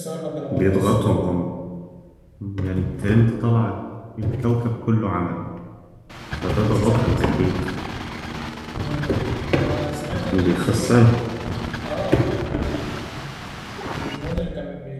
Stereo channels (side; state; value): both; identical; correlation 1.00